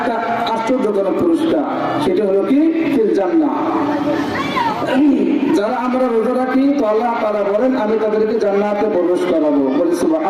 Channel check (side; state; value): both; identical; correlation 1.00